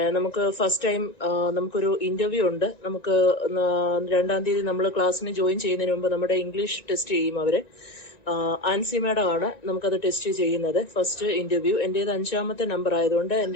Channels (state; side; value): late; right; 1.9 ms